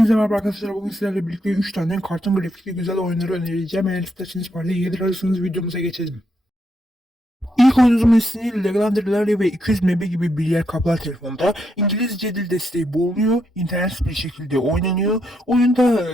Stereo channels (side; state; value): both; normal; correlation 0.79